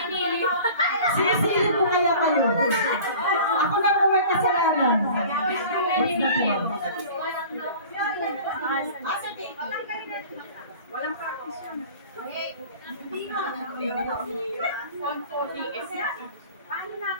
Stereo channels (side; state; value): both; inverted; correlation -0.42